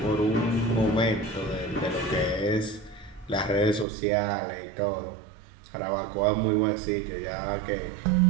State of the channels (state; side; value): drops out; left; at 3.9 s